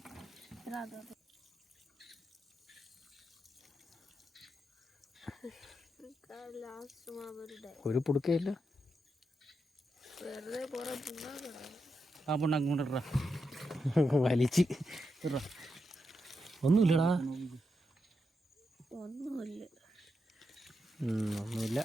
ഒരു പുടുക്കയില്ല. ആ പുണ്ണാക്ക് കൊണ്ടിട്ടാ വലിച്ച്. ഒന്നുമില്ലടാ, ഒന്നുമില്ല.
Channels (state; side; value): normal; both; correlation 0.85